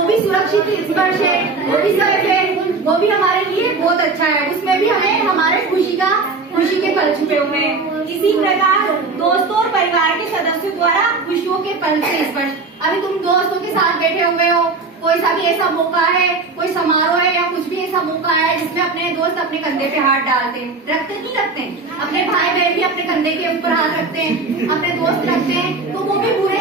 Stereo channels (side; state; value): left; quieter; 3.9 dB